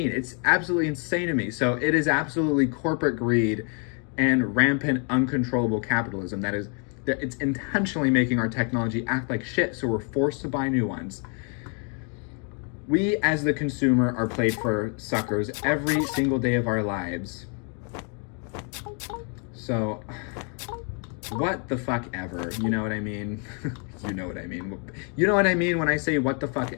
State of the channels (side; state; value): right; quieter; 39.1 dB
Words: It's absolutely insane to me. So it is absolutely corporate greed and rampant, uncontrollable capitalism that it's intentionally making our technology act like shit, so we're forced to buy new ones. We, as the consumer, are played for suckers every single day of our lives. So, what the fuck ever? You know what I mean? You know what I mean. You know what I mean when I say what the fuck